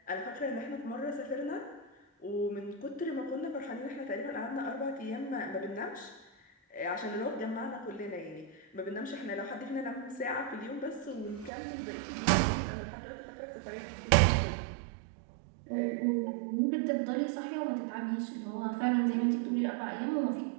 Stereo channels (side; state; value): left; drops out; at 11.5 s